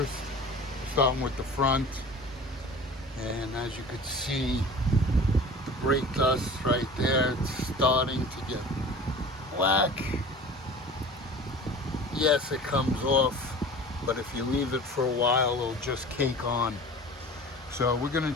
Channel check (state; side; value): normal; both; correlation 0.39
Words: We're starting with the front. And as you could see, the brake dust right there, it's starting to get black. Yes, it comes off, but if you leave it for a while, it'll just cake on. So we're going